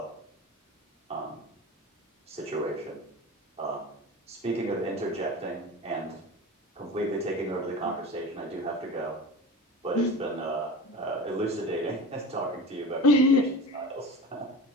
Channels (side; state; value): both; normal; correlation 0.33